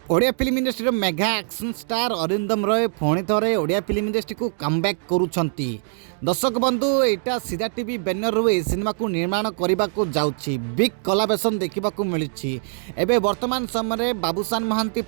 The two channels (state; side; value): silent; left; digital silence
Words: Odia film industry mega action star Arindam Roy पुणी थे Odia film industry को कमबैक करुछंती। दर्शक बंधु एटा सीधा टीवी बैनर रू सिनेमा को निर्माण करने को जाउछि बिग कोलाबोरेशन देखा मिलूँ। एबे वर्तमान समय बाबूशान महांती